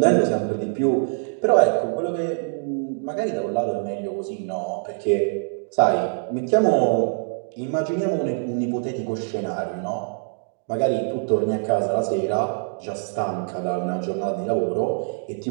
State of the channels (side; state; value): left; silent; digital silence